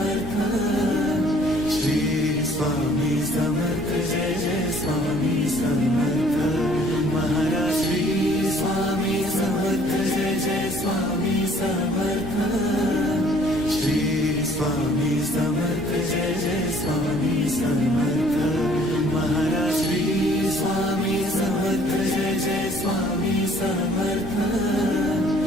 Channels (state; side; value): noise; left; rumble, 17 dB below the sound